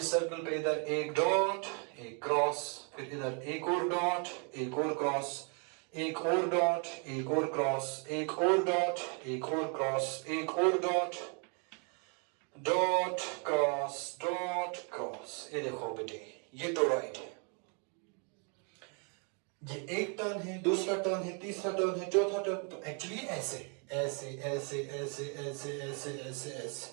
सर्कल पे इधर एक डॉट, एक क्रॉस, फिर इधर एक और डॉट, एक और क्रॉस, एक और डॉट, एक और क्रॉस, एक और डॉट, एक और क्रॉस, एक और डॉट, डॉट क्रॉस। ये देखो बेटे, ये टोरॉइड है। ये एक टर्न है, दूसरा टर्न है, तीसरा टर्न है, चौथा टर्न। तो एक्चुअली ऐसे ऐसे ऐसे ऐसे ऐसे ऐसे ऐसे ऐसे।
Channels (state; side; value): quieter; left; 38.0 dB